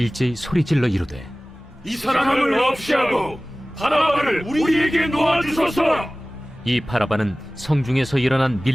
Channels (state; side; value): normal; both; correlation 0.98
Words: 소리질러 이르되, 이 사람을 없이 하고 바라바를 우리에게 놓아주소서. 이 바라바는 성중에서 일어난